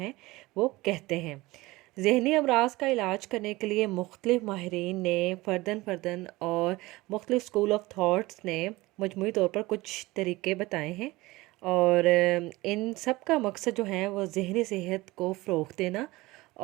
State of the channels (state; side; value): quieter; left; 20.4 dB